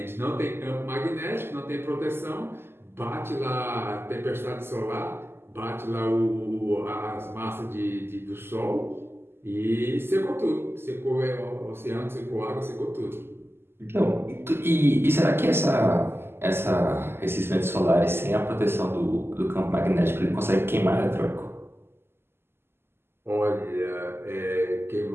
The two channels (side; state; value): left; late; 0.12 ms